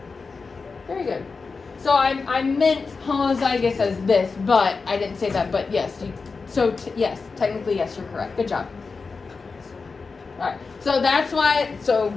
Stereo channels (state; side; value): quieter; right; 4.5 dB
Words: Very good. So I meant homozygous as this, but I didn't say that. But yes, yes, technically yes, you're correct. Good job. All right. So that's why. So